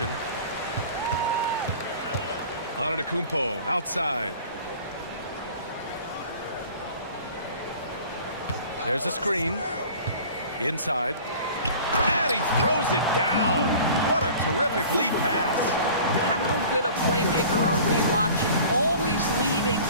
Antetokounmpo outside. There's a screen. Inside. And he throws it down. What a terrific lead pass. How good a playmaker are we watching? Always leading,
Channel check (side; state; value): both; inverted; correlation -0.44